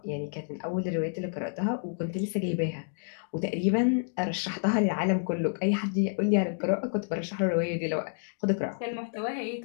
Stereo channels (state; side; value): silent; right; digital silence